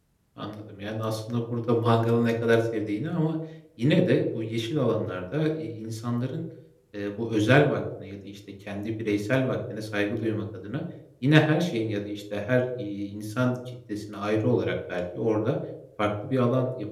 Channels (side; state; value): both; identical; correlation 1.00